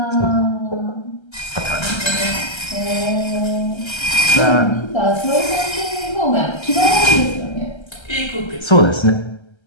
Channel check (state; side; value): late; right; 1.3 ms